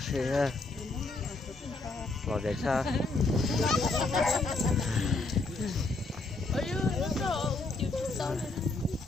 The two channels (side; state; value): right; quieter; 3.3 dB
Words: sẽ ngồi để xa.